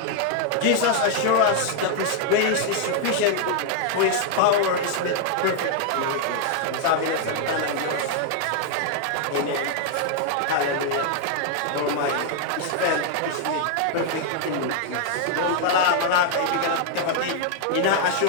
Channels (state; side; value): different; both; correlation 0.00